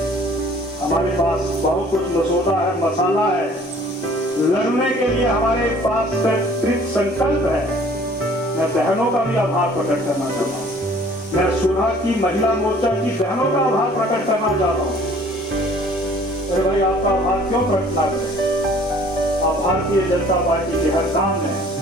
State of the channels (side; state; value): both; normal; correlation 0.54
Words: हमारे पास बहुत कुछ मसौदा है, मसाला है, लड़ने के लिए हमारे पास कृत संकल्प है। मैं बहनों का भी आभार प्रकट करना चाहता हूँ। मैं सुलह की महिला मोर्चा की बहनों का आभार प्रकट करना चाहता हूँ। अरे भाई, आपका आभार क्यों प्रकट ना करें? आप भारतीय जनता पार्टी के हर काम में